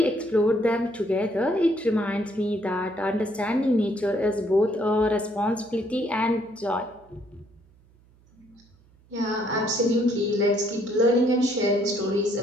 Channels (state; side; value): noise; right; hum, 30 dB below the sound